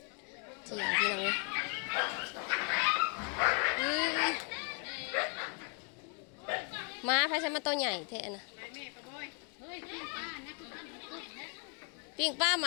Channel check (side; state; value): right; quieter; 38.8 dB